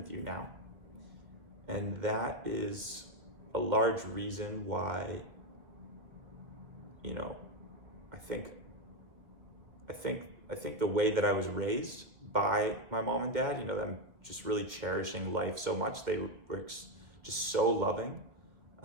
you now. And that is a large reason why, you know, I think the way that I was raised by my mom and dad, them just really cherishing life so much. They were just so loving,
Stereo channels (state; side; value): late; left; 2.1 ms